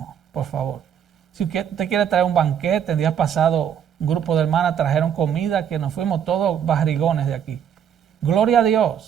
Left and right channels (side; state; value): left; quieter; 8.6 dB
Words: por favor. Si usted quiere traer un banquete, el día pasado un grupo de hermanas trajeron comida que nos fuimos todos barrigones de aquí. Gloria a